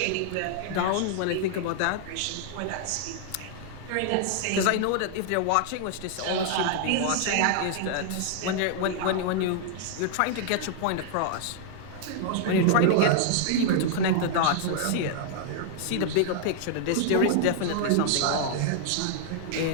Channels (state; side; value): different; both; correlation 0.00